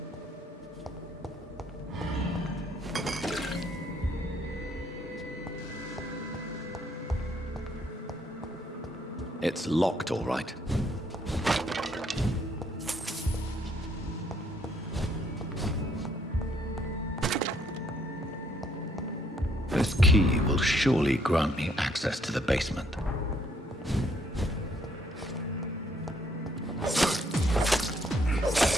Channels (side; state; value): both; normal; correlation 0.68